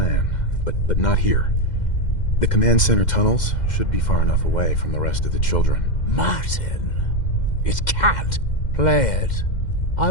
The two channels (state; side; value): late; right; 2.1 ms